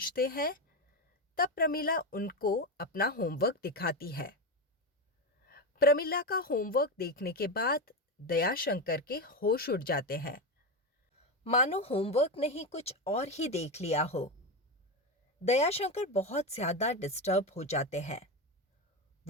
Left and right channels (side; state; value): both; normal; correlation 0.14